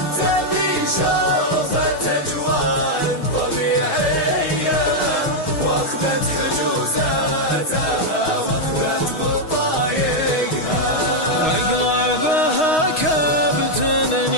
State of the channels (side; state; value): right; late; 6.4 ms